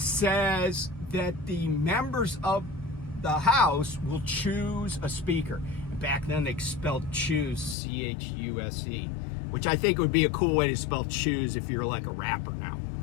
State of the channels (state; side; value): drops out; right; at 7.8 s